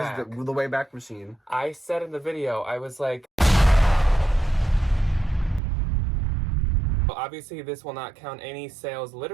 the Wayback Machine? I said in the video, I was like, obviously this will not count any sales,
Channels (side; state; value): left; drops out; at 5.6 s